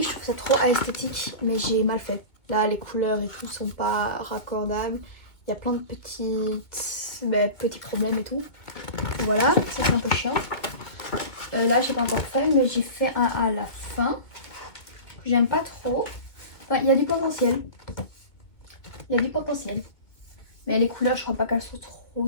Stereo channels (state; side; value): late; right; 2.4 ms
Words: je trouve ça trop esthétique, mais j'ai mal fait. Là, les couleurs et tout sont pas raccordables. Il y a plein de petits problèmes et tout. Voilà, ça c'est un peu chiant. Là, j'ai pas encore fait, mais j'ai fait un à la fin. J'aime pas trop. Enfin, il y a du potentiel. Il y a du potentiel. Mais les couleurs, je crois pas qu'elles sont